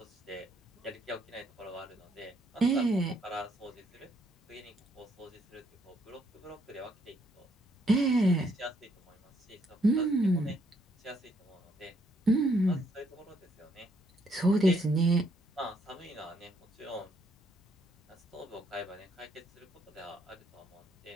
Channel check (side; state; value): both; normal; correlation 0.71